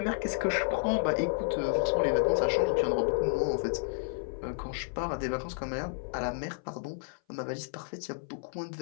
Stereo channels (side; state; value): right; silent; 56 dB below the other